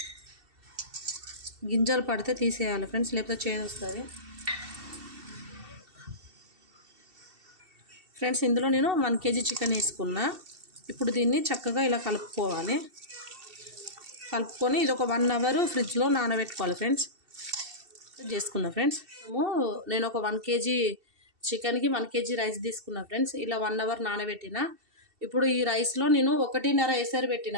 గింజలు పడితే తీసేయాలి ఫ్రెండ్స్, లేకపోతే చేదు వస్తుంది. ఫ్రెండ్స్ ఇందులో నేను 1 కేజీ చికెన్ వేసుకున్నా. ఇప్పుడు దీన్ని చక్కగా ఇలా కలుపుకోవాలి. కలుపుకొని ఇది ఒక 1 అవర్ ఫ్రిడ్జ్లో నానబెట్టుకోవాలి ఫ్రెండ్స్. చేసుకున్నా ఫ్రెండ్స్. నేను ఒక 1 కేజీ చికెన్కి 1 కేజీ రైస్ తీసుకున్నా ఫ్రెండ్స్. ఇలా 1 అవర్ నానబెట్టిన. ఇప్పుడు ఈ రైస్లో నేను 1.5 ఎసరు పెట్టిన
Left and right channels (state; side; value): late; left; 2.7 ms